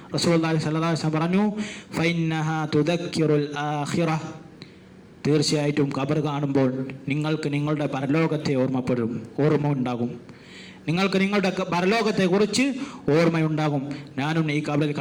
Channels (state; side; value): identical; both; correlation 1.00